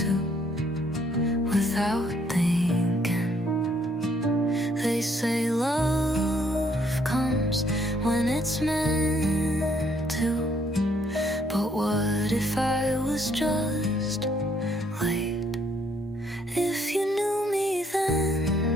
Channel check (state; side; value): normal; both; correlation 0.68